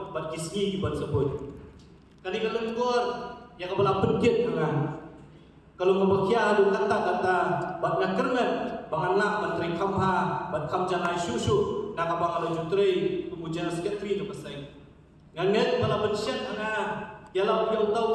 bat kisni kibat sebut kali kelengkor yang kepala penkit dengan kalau ngebakia adu kata-kata bat nakernet banganlah menteri kamha bat kamjanai susu nak abang ala jutri kemudian sekretari tu pasai nganget bala bensyat ana yalau yang tahu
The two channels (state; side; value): identical; both; correlation 1.00